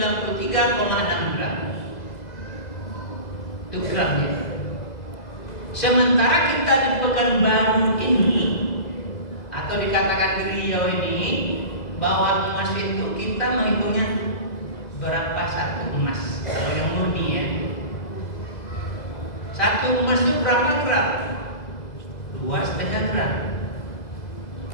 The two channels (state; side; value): late; right; 2.0 ms